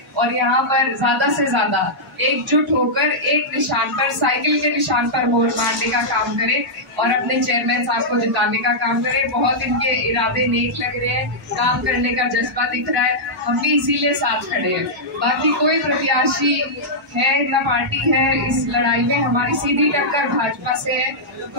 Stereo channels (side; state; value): both; normal; correlation -0.09